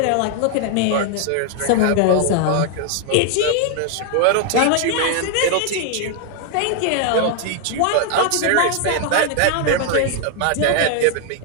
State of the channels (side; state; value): both; different; correlation 0.00